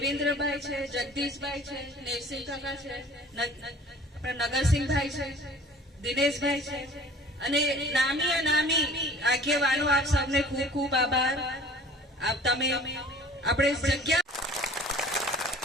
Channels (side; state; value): both; normal; correlation 0.47